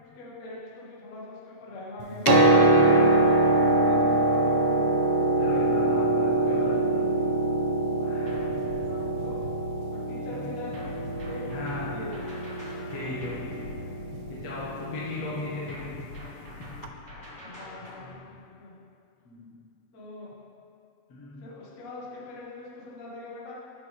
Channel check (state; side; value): late; right; 7.3 ms